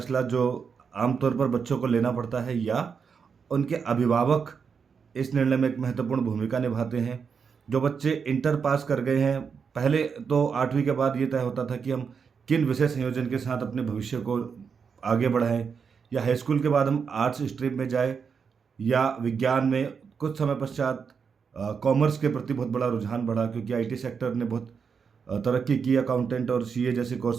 जो आमतौर पर बच्चों को लेना पड़ता है या उनके अभिभावक इस निर्णय में एक महत्वपूर्ण भूमिका निभाते हैं। जो बच्चे इंटर पास कर गए हैं, पहले तो 8वीं के बाद ये तय होता था कि हम किन विषय संयोजन के साथ अपने भविष्य को आगे बढ़ाएं, या हाई स्कूल के बाद हम आर्ट्स स्ट्रीम में जाए या विज्ञान में। कुछ समय पश्चात कॉमर्स के प्रति बहुत बड़ा रुझान बढ़ा, क्योंकि आईटी सेक्टर ने बहुत तरक्की की। अकाउंटेंट और सीए जैसे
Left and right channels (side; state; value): left; quieter; 6.1 dB